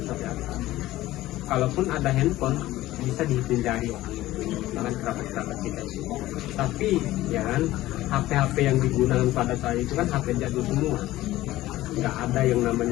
apa. Kalaupun ada handphone bisa dihindari dengan kerabat-kerabat kita itu. Tapi ya kan, HP-HP yang digunakan pada saya itu kan HP jadul semua. Nggak ada yang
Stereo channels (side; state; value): right; quieter; 16.2 dB